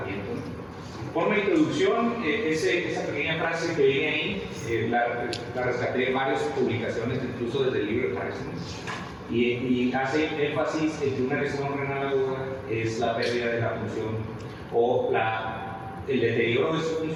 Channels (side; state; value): both; identical; correlation 1.00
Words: Por una introducción, esa pequeña frase que viene ahí, la rescaté de varias publicaciones, incluso desde el libro de Parkinson, y hace énfasis en que una lesión renal aguda es la pérdida de la función o el deterioro de su